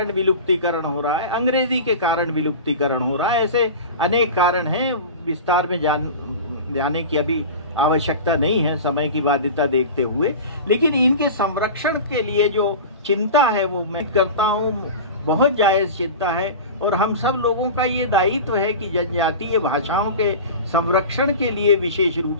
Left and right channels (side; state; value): both; inverted; correlation -0.31